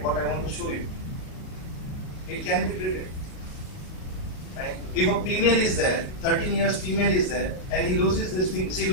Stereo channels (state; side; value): late; right; 38 ms